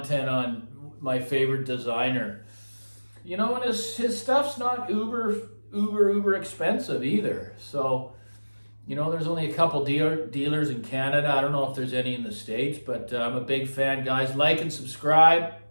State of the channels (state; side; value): inverted; both; correlation -1.00